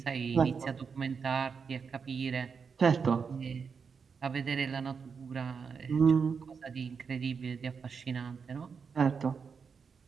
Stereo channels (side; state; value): left; quieter; 5.8 dB